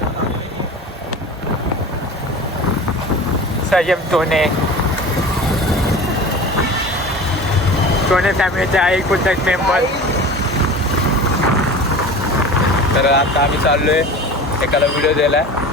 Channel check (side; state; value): both; normal; correlation 0.36